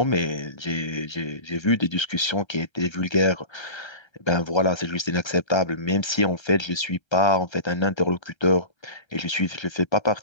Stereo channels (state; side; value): late; right; 1.3 ms